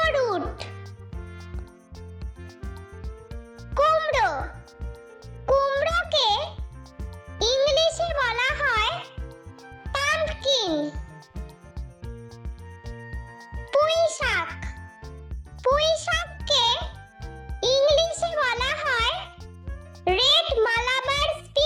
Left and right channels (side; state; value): both; identical; correlation 1.00